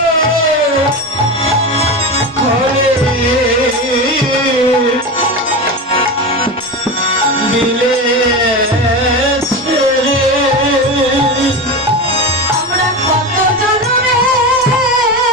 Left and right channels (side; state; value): both; normal; correlation 0.22